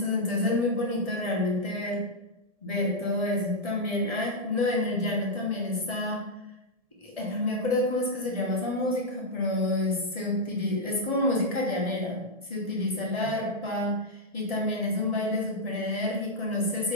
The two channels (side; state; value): left; late; 1.7 ms